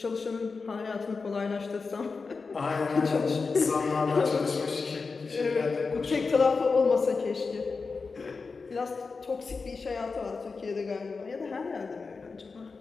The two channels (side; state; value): right; quieter; 4.5 dB